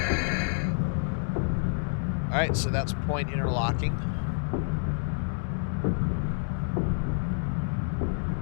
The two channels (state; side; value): silent; right; digital silence